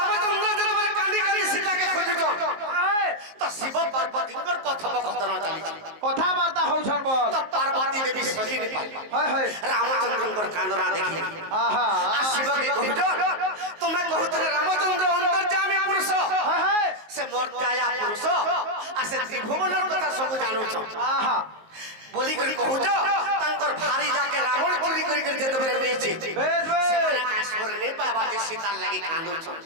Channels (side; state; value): left; late; 19 ms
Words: যেতবেলে কান্দি কান্দি সীতাকে খুঁজুছ আয় তো শিব পার্বতীঙ্কর কথোপকথন চালিছে কথাবার্তা হউছন বল তো পার্বতী দেবী সহি নি পারবা হয় হয় রামচন্দ্রঙ্কর কান্দনা দেখি আহা আর শিবকে কহুছ তুমি কহুছিলে রামচন্দ্র অন্তর্যামী পুরুষ হয় হয় সে মোর দয়া পুরুষ আর সে ত্রিভুবনের কথা সবু জানুছ আহা বলি করে কহুছ তাঙ্কর ভারি যাকে রাবণ চুরি করি করে যেতবেলে নেইছে বেশ বেশ ସେମାନେ କାଶ୍ମୀର ନେଇ ପାଇବା ଯେ ସୀତାର ଲାଗି କାନ୍ଦୁଛନ୍